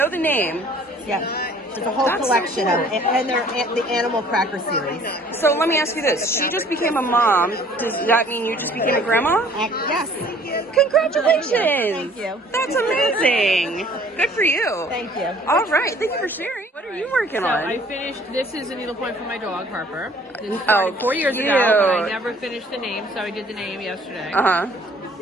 the name. Yeah. There's a whole collection of them, and they're the Animal Cracker series. So let me ask you this. She just became a mom. Does that mean you just became a grandma? Yes. Congratulations. Thank you. That's amazing. Good for you. Thank you. All right. Thank you for sharing. What are you working on? I finished, this is a needlepoint for my dog, Harper. This Oh, started 4 years ago, but I never finished the name, so I did the name yesterday. Uh-huh.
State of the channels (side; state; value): both; normal; correlation 0.55